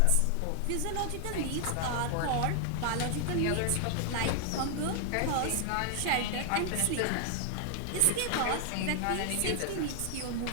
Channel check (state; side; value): different; both; correlation 0.00